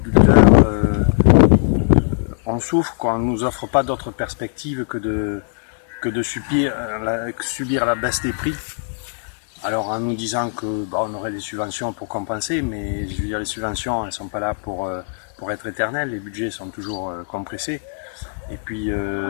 On souffre quoi. On nous offre pas d'autre perspective que de subir la baisse des prix. Alors en nous disant que on aurait des subventions pour compenser, mais je veux dire les subventions elles sont pas là pour être éternelles, les budgets sont toujours compressés. Et puis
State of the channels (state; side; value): silent; right; 65 dB below the other